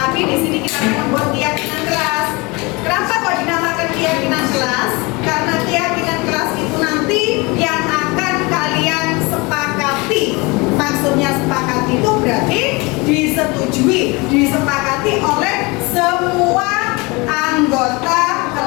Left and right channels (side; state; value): right; quieter; 26.0 dB